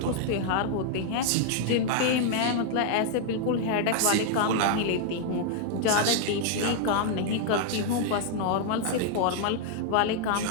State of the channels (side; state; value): both; different; correlation -0.01